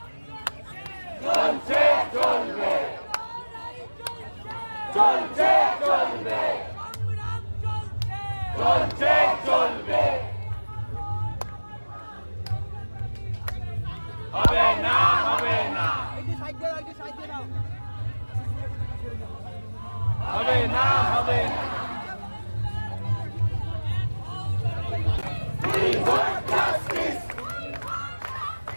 চলছে চলবে, চলছে চলবে, চলছে চলবে, হবে না, হবে না, হবে না, হবে না। We want justice.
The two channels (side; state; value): both; inverted; correlation -1.00